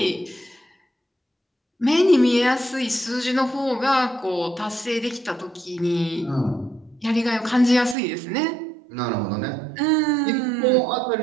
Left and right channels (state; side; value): drops out; left; at 8.0 s